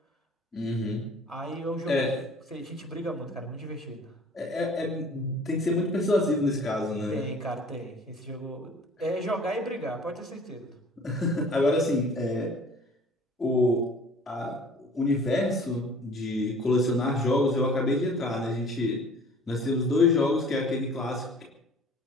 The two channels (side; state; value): both; normal; correlation 0.49